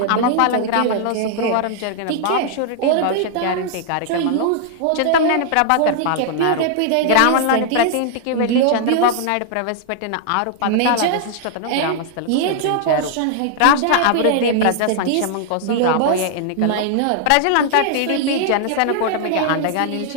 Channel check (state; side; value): different; both; correlation -0.01